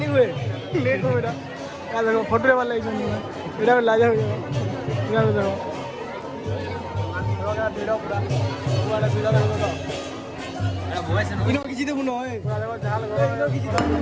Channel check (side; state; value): both; identical; correlation 1.00